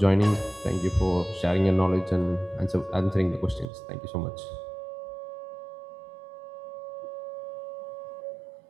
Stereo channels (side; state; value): left; drops out; at 3.7 s